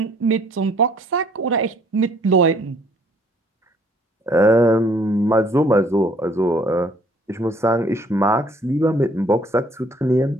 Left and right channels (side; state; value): both; normal; correlation 0.60